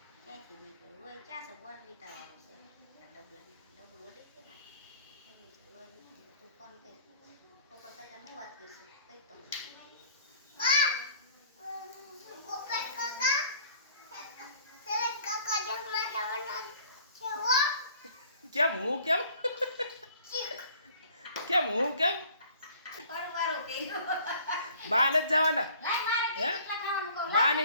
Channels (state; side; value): inverted; both; correlation -0.53